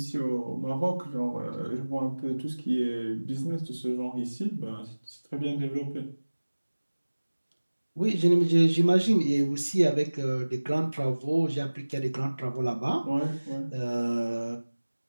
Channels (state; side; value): inverted; both; correlation -1.00